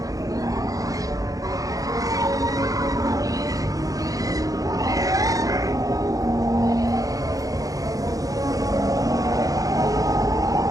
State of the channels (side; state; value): left; late; 0.17 ms